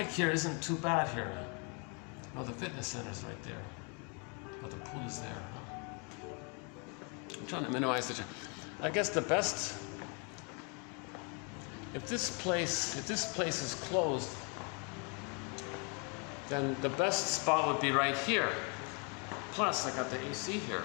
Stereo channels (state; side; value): quieter; right; 35.3 dB